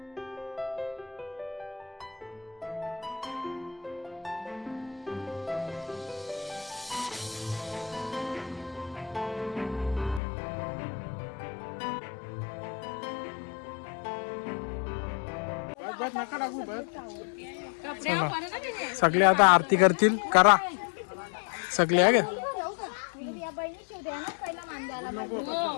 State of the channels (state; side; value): drops out; right; at 10.2 s